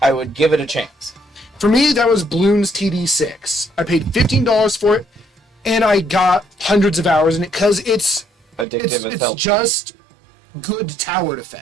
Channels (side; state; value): left; drops out; at 8.7 s